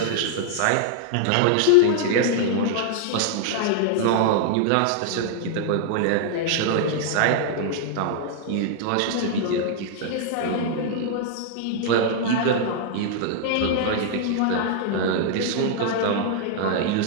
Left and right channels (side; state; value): both; different; correlation -0.01